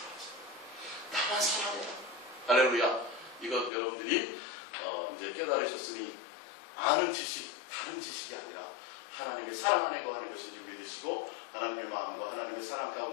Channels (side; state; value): right; drops out; at 3.7 s